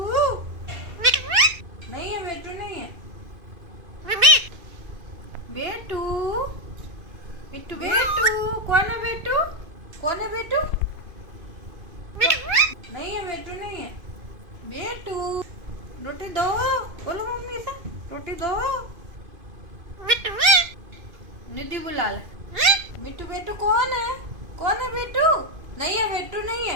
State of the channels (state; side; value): late; left; 2.4 ms